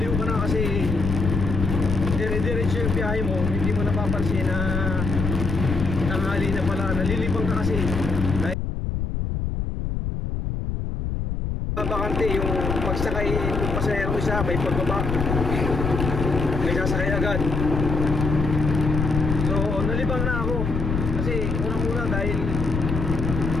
ka na kasi dire-diretso yung biyahe mo, hindi mo napapansin na tanghali na pala, nalilibang ka kasi dahil bakante yung pagsakay ng pasahero isa, may pagbaba, may sasakay agad. So nalibang na ako kasi unang-una dahil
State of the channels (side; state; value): left; noise; rumble, 2 dB below the sound